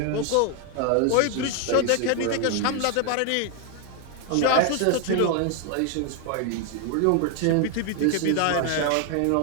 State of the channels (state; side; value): different; both; correlation 0.00